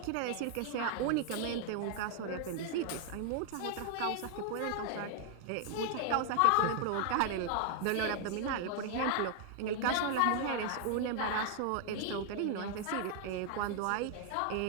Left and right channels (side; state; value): both; different; correlation 0.00